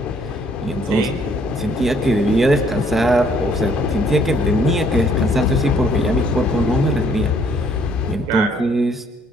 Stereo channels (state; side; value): normal; both; correlation 0.64